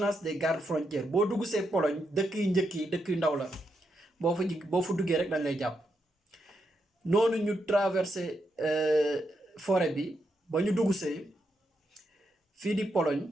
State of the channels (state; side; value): normal; both; correlation 0.82